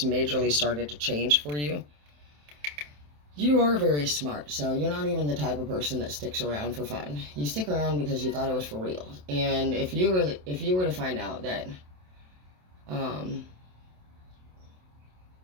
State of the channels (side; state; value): left; late; 27 ms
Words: majorly started to change for you. You are very smart, so you're not even the type of person that sticks around for fun. You stick around because you thought it was for real. And if you were to find out that,